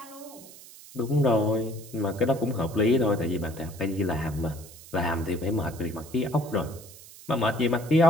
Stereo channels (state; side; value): noise; right; hiss, 19 dB below the sound